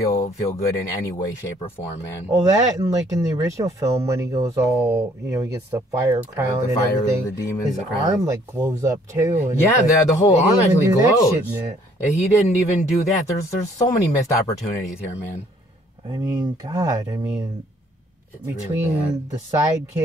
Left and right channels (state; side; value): normal; both; correlation 0.62